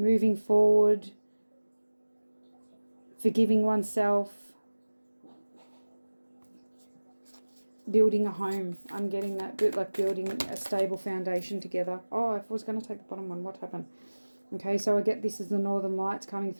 forward, forgiving oneself, building a home. I'm getting that bit like building a stable foundation together. Oh, if I was going to take the bottom one, what happened? Okay, so I get this as the Northern Lights coming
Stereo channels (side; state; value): both; inverted; correlation -1.00